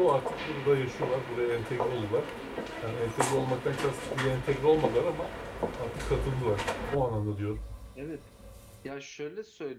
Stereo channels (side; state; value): both; identical; correlation 1.00